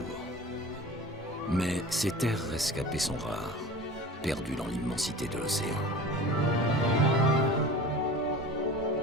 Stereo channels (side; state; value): both; normal; correlation 0.38